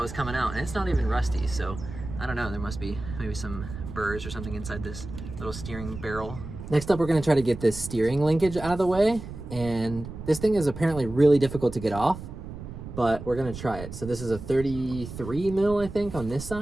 coming out, and it's not even rusty, so I don't know, there must be maybe some burrs or something inside this little steering barrel. Next up, we're gonna try to get this steering linkage out of the way, and this thing is apparently really difficult to get off, but we're gonna try it. So this is a 33 mil, I think, on this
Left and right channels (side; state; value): right; noise; rumble, 11 dB below the sound